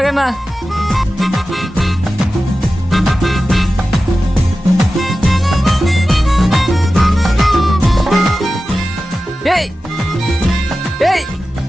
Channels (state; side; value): normal; both; correlation 0.94